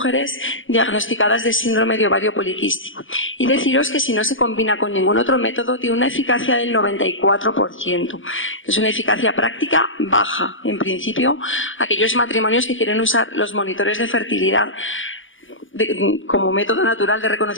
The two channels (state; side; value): late; right; 0.57 ms